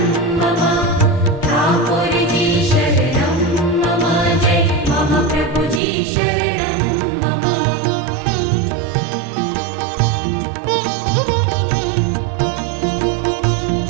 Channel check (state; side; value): drops out; left; at 5.8 s